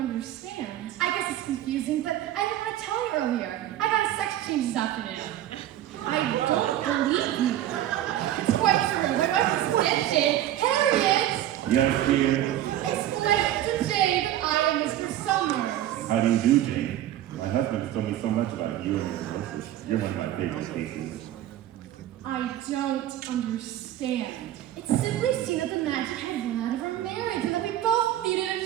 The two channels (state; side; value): quieter; left; 12.7 dB